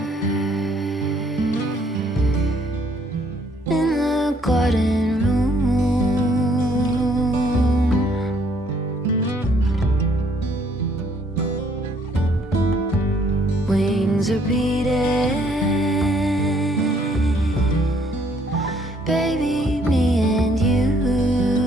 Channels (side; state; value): both; normal; correlation 0.65